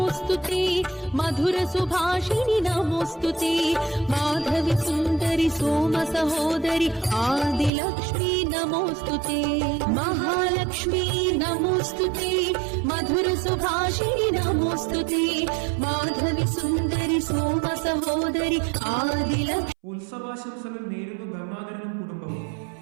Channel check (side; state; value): left; drops out; at 7.7 s